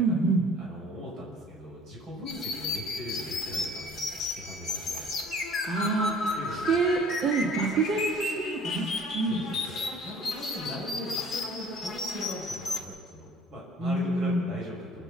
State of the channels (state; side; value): normal; both; correlation 0.51